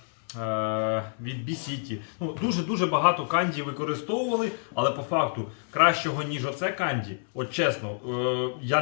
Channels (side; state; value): right; silent; 60 dB below the other